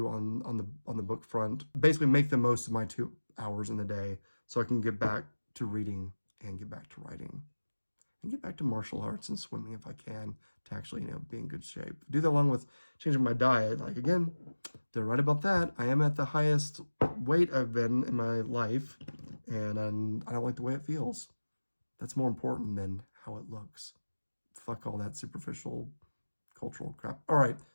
on the book front. Basically, make the most of my 2 hours in the day so I can get back to reading and get back to writing and get back to martial arts and swimming if I can, to actually be in good shape. Do that along with changing my diet. Again, they're right about that. I am at the highest weight I've been in my life, and I don't like the way it feels. That's more important than how it looks. Fuck all that superficial cultural crap. All right,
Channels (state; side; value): inverted; both; correlation -1.00